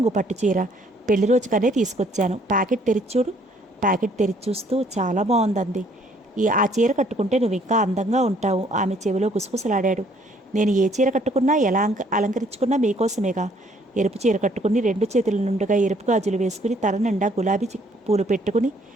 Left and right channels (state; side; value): normal; both; correlation 0.63